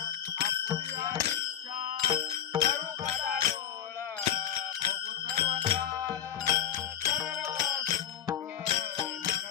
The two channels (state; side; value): quieter; right; 10.0 dB